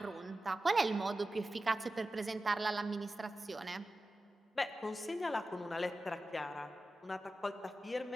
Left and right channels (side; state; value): both; normal; correlation 0.94